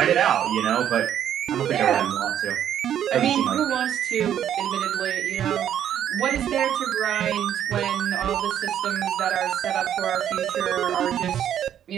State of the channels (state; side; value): quieter; left; 10.0 dB